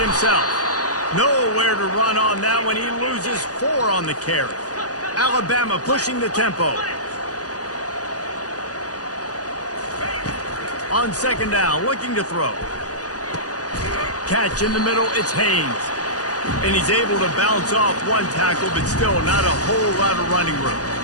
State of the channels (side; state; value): right; late; 0.68 ms